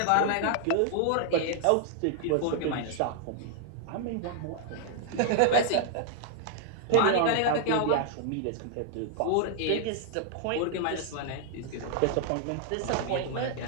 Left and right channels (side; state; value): both; different; correlation 0.00